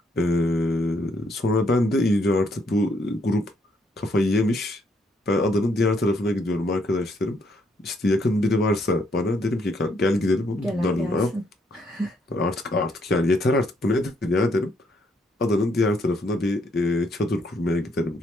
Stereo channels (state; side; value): normal; both; correlation 0.72